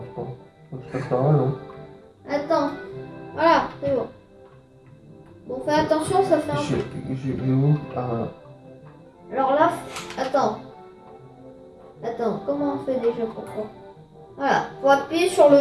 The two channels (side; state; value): both; identical; correlation 1.00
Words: pas. Faut que je passe par là, non? Attends. Voilà, c'est bon. Bon, fais attention, ça fait un peu. Je vais où? Ah, voilà. Alors là, attends. Attends, comment on fait déjà pour ça? Voilà, faut appuyer sur le